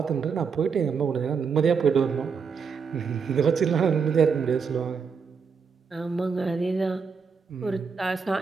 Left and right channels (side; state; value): left; quieter; 5.8 dB